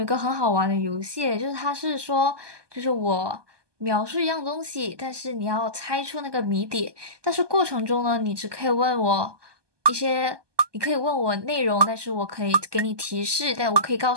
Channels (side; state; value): left; late; 1.2 ms